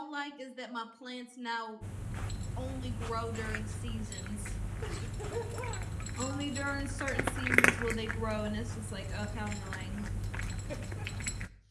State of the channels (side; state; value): both; identical; correlation 1.00